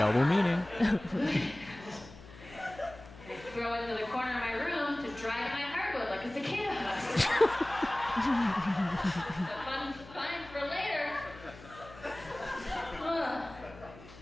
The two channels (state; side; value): noise; left; hum, 18 dB below the sound